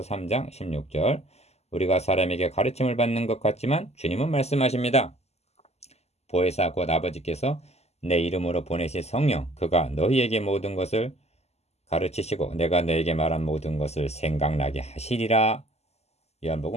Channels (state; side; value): late; right; 0.31 ms